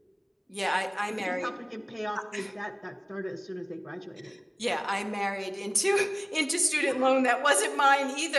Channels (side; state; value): both; identical; correlation 1.00